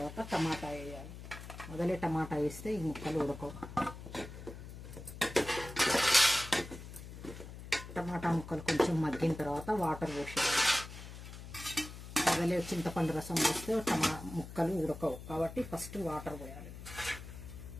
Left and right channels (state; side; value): noise; left; hum, 12 dB below the sound